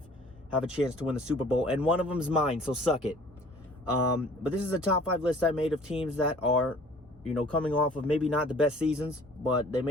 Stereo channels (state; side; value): normal; both; correlation 0.52